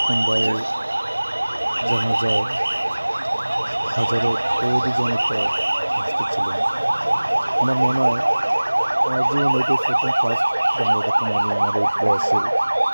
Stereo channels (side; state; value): both; inverted; correlation -1.00